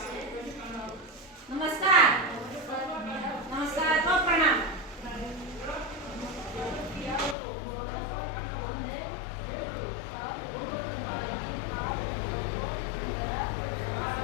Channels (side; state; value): right; drops out; at 7.4 s